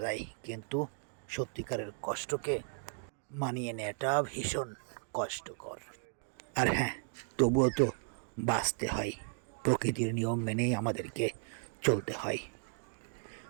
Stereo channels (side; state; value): left; silent; 54 dB below the other